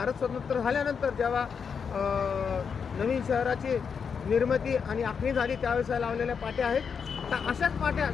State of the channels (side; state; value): right; quieter; 6.4 dB